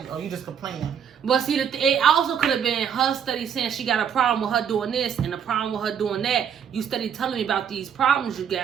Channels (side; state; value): left; quieter; 8.0 dB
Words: oh, you just complaining. But see, it also could have been her study saying she got a problem with her doing this and a problem with her doing that. You study telling me about these problems you